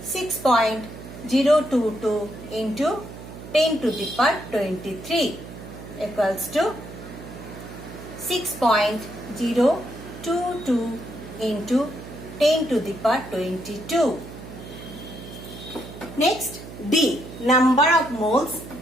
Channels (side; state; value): right; noise; hum, 13 dB below the sound